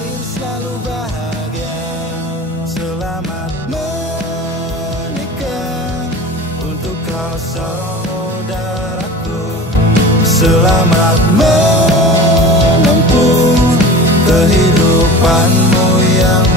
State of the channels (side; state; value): both; normal; correlation 0.36